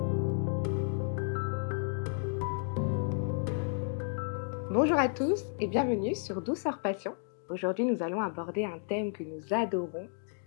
Bonjour à tous et bienvenue sur Douceur Passion. Aujourd'hui, nous allons aborder un thème que nous adorons,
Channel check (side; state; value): right; silent; digital silence